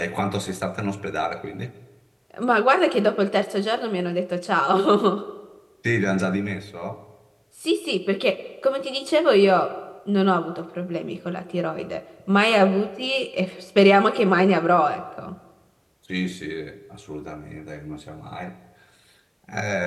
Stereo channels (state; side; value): identical; both; correlation 1.00